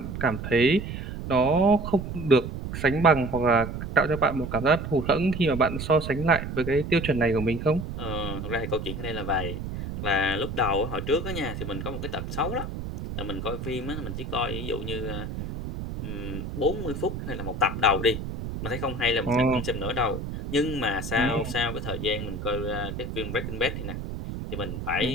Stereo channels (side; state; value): right; noise; rumble, 6 dB below the sound